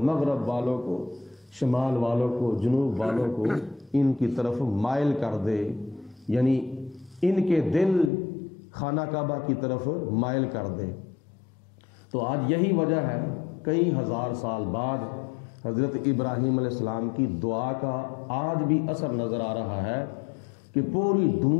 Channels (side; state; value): right; drops out; at 8.1 s